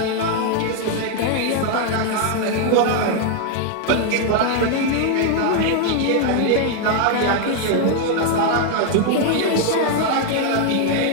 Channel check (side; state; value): both; different; correlation 0.00